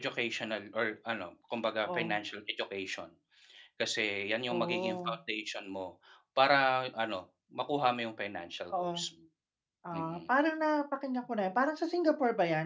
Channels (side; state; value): both; identical; correlation 1.00